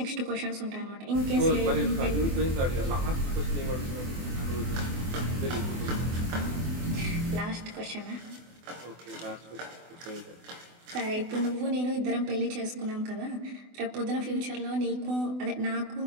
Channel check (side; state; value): left; late; 24 ms